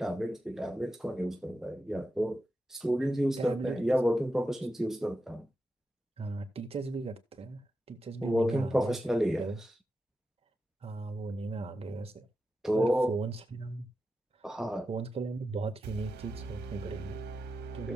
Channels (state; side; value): normal; both; correlation 0.90